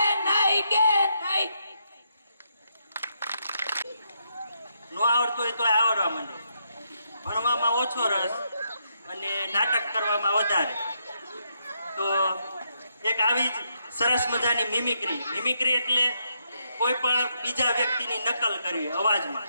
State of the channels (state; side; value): inverted; both; correlation -0.78